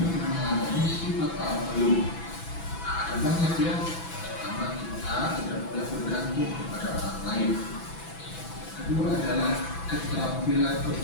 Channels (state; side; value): late; right; 6.0 ms